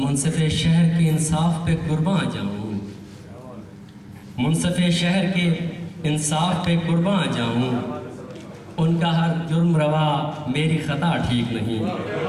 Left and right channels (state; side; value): identical; both; correlation 1.00